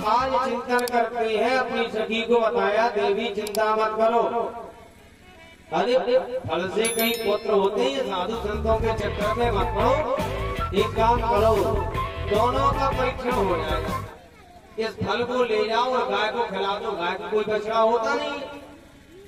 आज चिंतन करते हैं, अपनी सखी को बताया देवी चिंता मत करो, अरे फल से कई पुत्र होते हैं, साधु संतों के चक्कर में मत पड़ो। एक काम करो, दोनों का परीक्षण हो जाएगा, इस फल को ले जाओ और गाय को खिला दो। गाय को कोई बछड़ा होता नहीं,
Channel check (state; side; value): identical; both; correlation 1.00